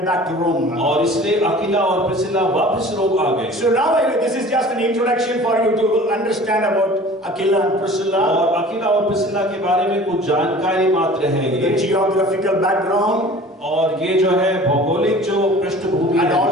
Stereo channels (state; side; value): normal; both; correlation 0.44